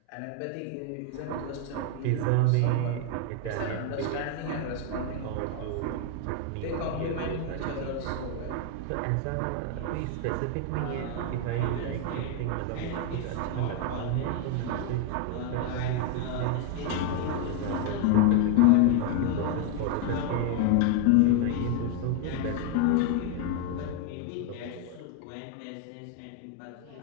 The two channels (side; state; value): both; different; correlation 0.01